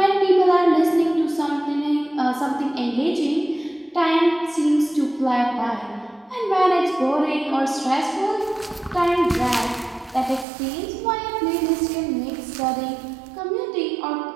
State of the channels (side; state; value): left; drops out; at 10.5 s